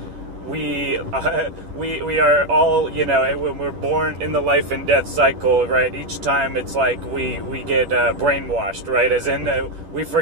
we are all, you know, when we're born in the life and death cycle, right? Each time it's like we get brainwashed, right? As in we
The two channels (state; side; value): late; left; 11 ms